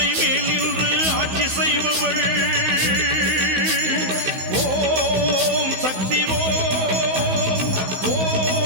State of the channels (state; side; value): late; left; 16 ms